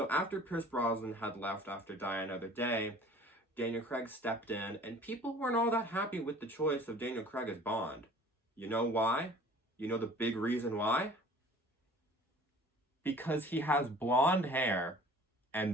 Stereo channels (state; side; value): normal; both; correlation 0.48